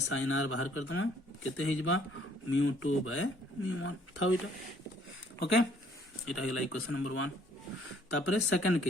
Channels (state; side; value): normal; both; correlation 0.62